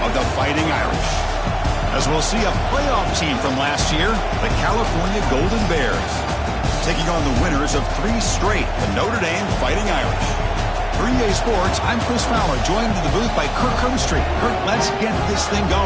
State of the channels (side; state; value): both; identical; correlation 1.00